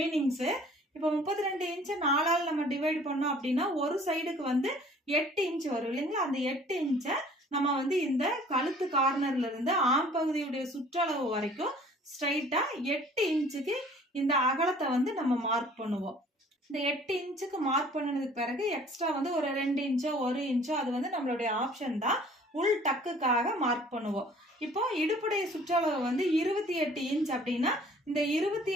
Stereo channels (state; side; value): normal; both; correlation 0.53